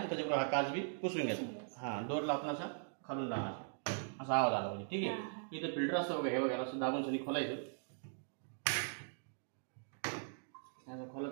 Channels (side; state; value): left; silent; digital silence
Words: त्याच्याबरोबर हा काच बी पुसून घ्यायचा. हा डोरला आपण असा खालून लावायचा, असा आवाज आला म्हणजे. ठीक आहे. इथं फिल्टर असतं बघा, हे वगैरे असं दाबून सनी खोलायचं,